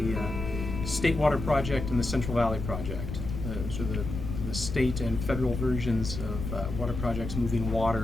State Water Project and the Central Valley Project. Those are the state and federal versions of water projects moving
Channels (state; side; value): noise; left; rumble, 6 dB below the sound